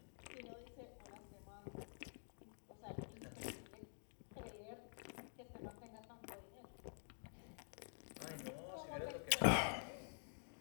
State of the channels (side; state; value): right; silent; digital silence